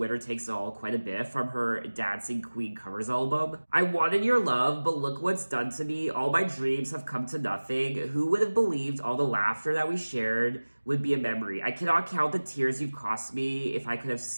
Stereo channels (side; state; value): both; inverted; correlation -1.00